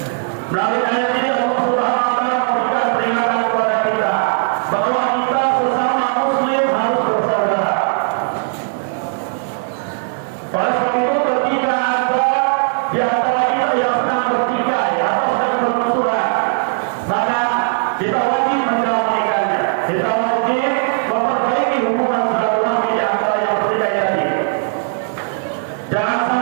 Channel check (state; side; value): silent; left; digital silence